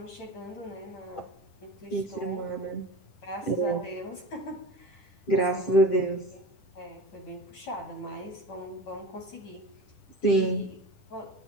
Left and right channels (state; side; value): late; right; 10 ms